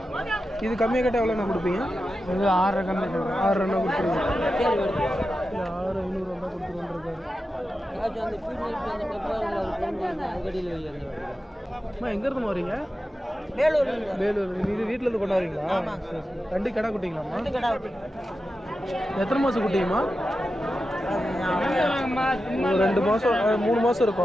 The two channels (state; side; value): normal; both; correlation 0.91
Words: இது கம்மியாக கேட்டால் எவ்வளோண்ணா கொடுப்பீங்க? இது 6 கம்மி 6 கொடுத்துருங்க. 6,500 வந்தால் கொடுத்துருவோன்ருக்காரு. அம்மா எங்கேருந்து வரீங்க? வேலூர். இது வீட்டிலேருந்து கொண்டாடுறீங்களா? சரி. 2 கடை குட்டிங்களாம்மா? எத்தனை மாதம் குட்டிங்கம்மா? 2 மாதம் 3 மாதம்